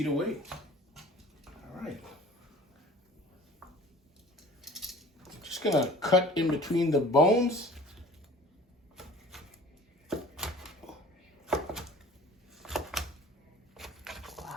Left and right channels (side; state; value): both; normal; correlation 0.45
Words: away. All right. Just gonna cut in between the bones